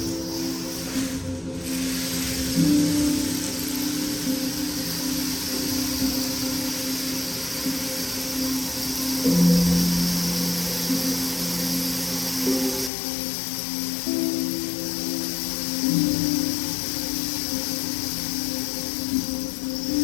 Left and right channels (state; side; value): drops out; right; at 12.9 s